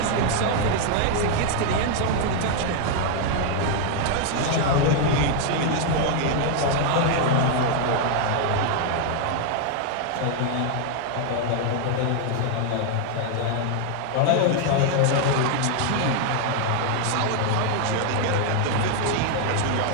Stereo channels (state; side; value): different; both; correlation 0.00